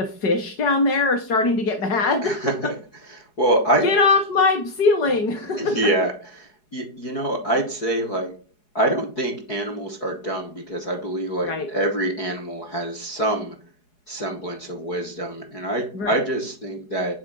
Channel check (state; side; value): late; right; 4.8 ms